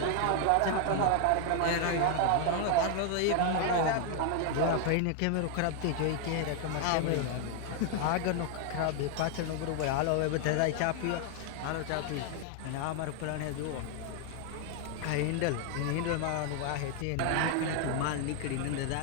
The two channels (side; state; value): both; different; correlation 0.00